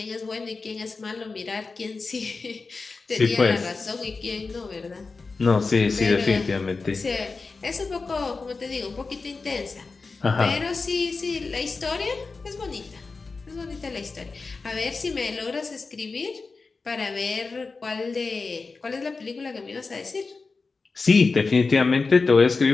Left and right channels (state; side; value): quieter; right; 4.2 dB